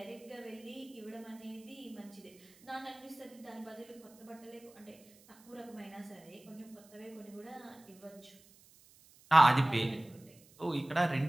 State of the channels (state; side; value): noise; right; hiss, 26 dB below the sound